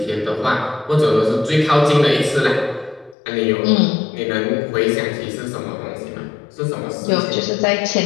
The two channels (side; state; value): right; drops out; at 3.2 s